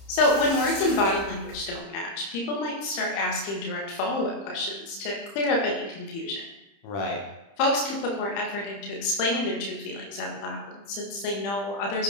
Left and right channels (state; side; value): late; right; 30 ms